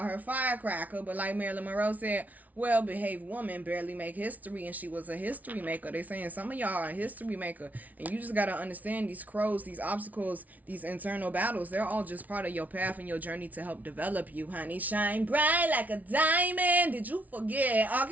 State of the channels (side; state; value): left; late; 0.074 ms